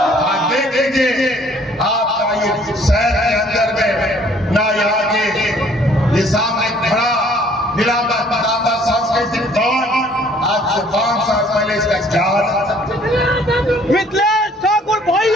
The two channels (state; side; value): normal; both; correlation 0.58